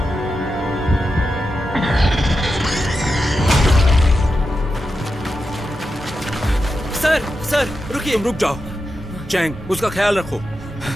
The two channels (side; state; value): both; normal; correlation 0.89